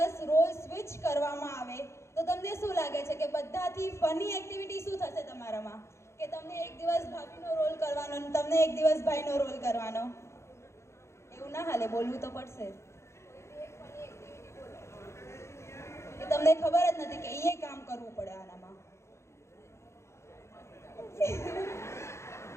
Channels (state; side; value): late; right; 0.13 ms